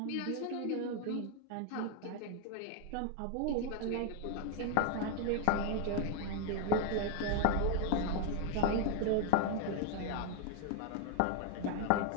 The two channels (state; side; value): different; both; correlation 0.01